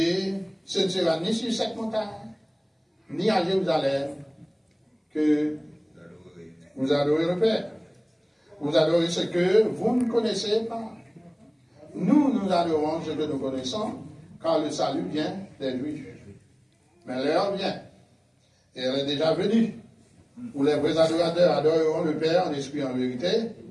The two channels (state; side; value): identical; both; correlation 1.00